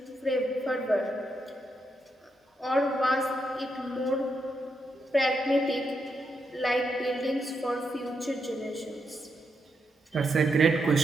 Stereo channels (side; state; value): both; normal; correlation 0.82